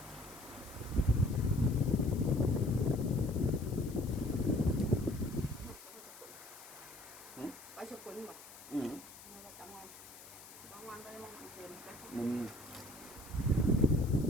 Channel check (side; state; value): left; noise; hiss, 17 dB below the sound